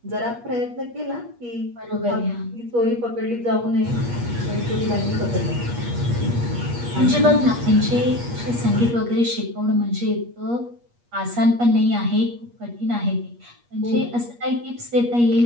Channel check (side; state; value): left; late; 8.4 ms